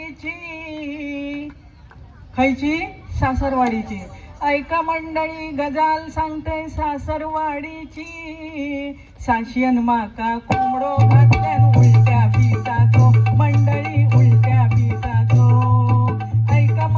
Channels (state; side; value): identical; both; correlation 1.00